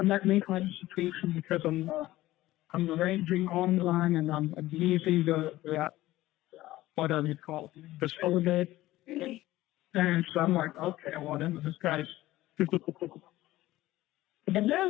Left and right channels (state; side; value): quieter; right; 16.4 dB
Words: because I'm arranging online and I'm using the whatever you call it, the solidate. And so I'm like, okay, well then this guy's and